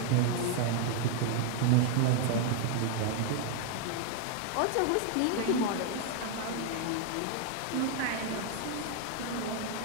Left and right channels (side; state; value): both; different; correlation 0.00